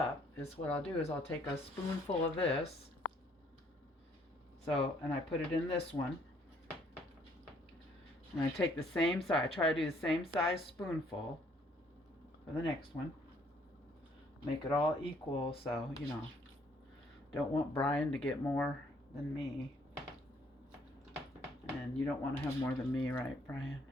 is what I'll do is I'll take a spoonful of this. So, and I put it in this one. And I take the same size, I try to do the same size spoonful for the next one. Make it all equal, so, don't want Brian to get more than me. And you don't want to have more than me, right, Brian?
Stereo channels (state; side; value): normal; both; correlation 0.64